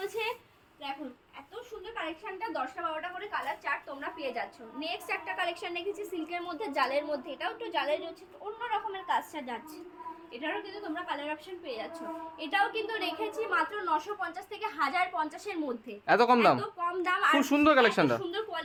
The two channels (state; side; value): identical; both; correlation 1.00